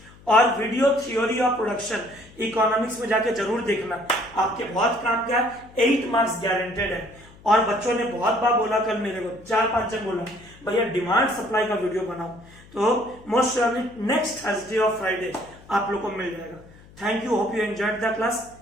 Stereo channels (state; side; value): noise; left; hum, 23 dB below the sound